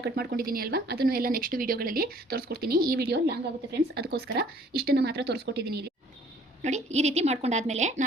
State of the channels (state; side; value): normal; both; correlation 0.56